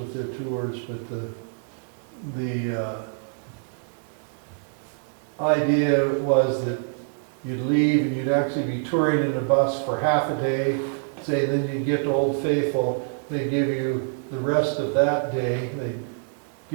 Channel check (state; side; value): silent; left; digital silence